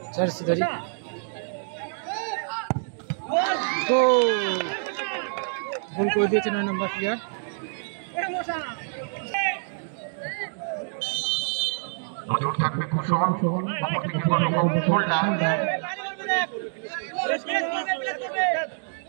জার্সি ধরি। গোল করে দিয়েছে 9 নম্বর প্লেয়ার। নজর থাকবে কুশল, অপরদিকে হোল্ডার।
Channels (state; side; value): silent; left; digital silence